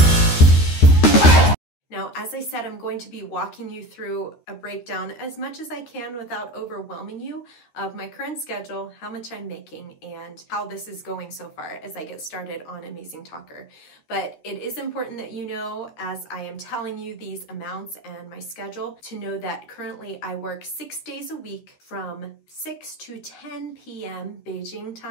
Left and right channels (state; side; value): late; right; 13 ms